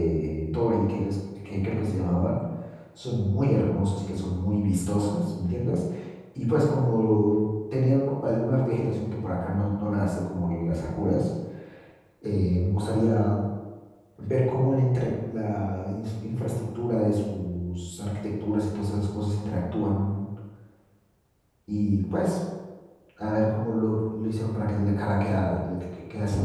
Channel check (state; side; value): identical; both; correlation 1.00